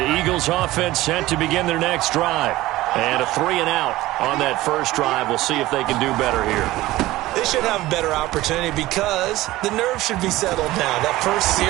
Eagles offense set to begin their next drive. And a 3-and-out on that first drive. We'll see if they can do better here. They should have a better opportunity because the nerves should be settled now. That first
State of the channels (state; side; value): quieter; left; 17.3 dB